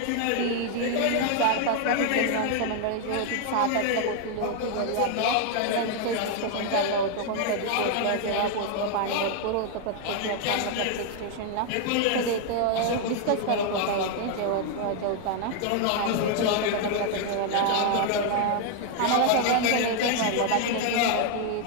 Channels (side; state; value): both; different; correlation 0.00